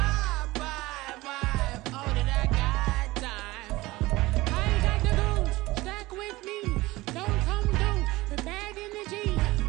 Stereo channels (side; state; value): left; quieter; 19.7 dB